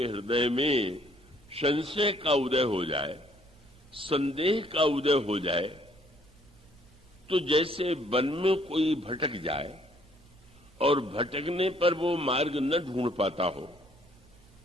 हृदय में संशय का उदय हो जाए, संदेह का उदय हो जाए, तो जैसे वन में कोई भटक जाए और भटकने पर वो मार्ग न ढूंढ पाता हो,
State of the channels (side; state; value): right; noise; hum, 29 dB below the sound